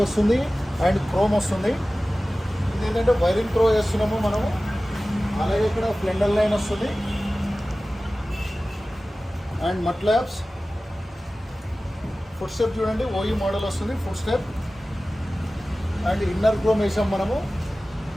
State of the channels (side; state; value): both; normal; correlation 0.96